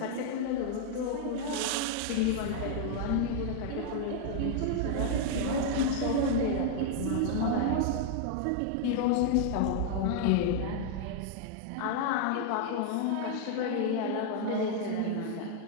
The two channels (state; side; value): different; both; correlation 0.00